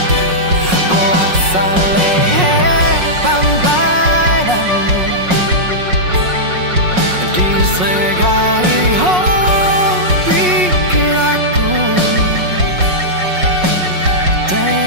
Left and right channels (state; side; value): late; left; 5.5 ms